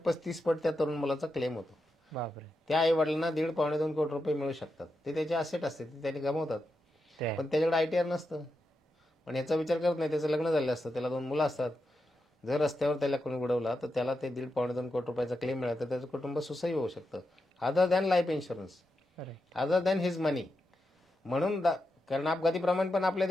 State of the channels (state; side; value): normal; both; correlation 0.87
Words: पट त्या तरुण मुलाचा क्लेम होतो. बापरे. त्या आई वडिलांना 1.5-2 कोटी रुपये मिळू शकतात. ते त्याचे असेट असते, ते त्यांनी गमावतात, ते आहे. पण त्याच्याकडे ITR नसतं. पण याचा विचार करत नाही. त्याचं लग्न झालं असतं, त्याला 2 मुलं असतात. जर रस्त्यावर त्याला कोणी उडवला तर त्याला ते 1.5-2 कोटी रुपयाचा क्लेम मिळाला तर त्याचं कुटुंब सुसह्य होऊ शकतं, other than life insurance, other than his money. म्हणून कारण अपघाती प्रमाण पण आपल्या